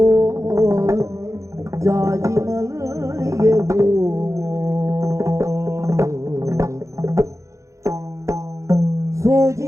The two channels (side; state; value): left; late; 0.15 ms